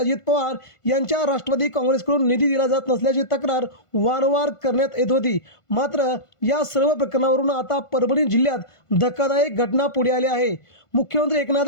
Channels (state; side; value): late; right; 1.5 ms